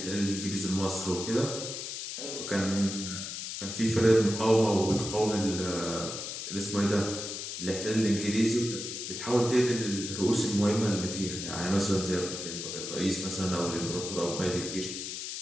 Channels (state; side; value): noise; left; hiss, 6 dB below the sound